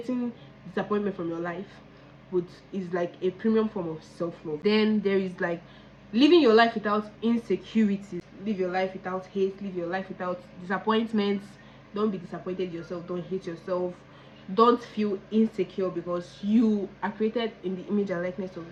disappointment from your life would is like a premium form of self-love. Then there is like living your life without insecurities. Live your life without hate. Live your life without disappointments. Don't be disappointed yourself. Don't hate yourself. Don't feel insecure because you are created in the image and likeness of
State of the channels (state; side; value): identical; both; correlation 1.00